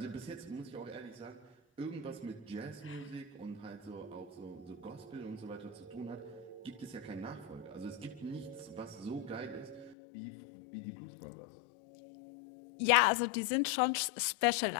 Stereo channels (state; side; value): drops out; right; at 10.0 s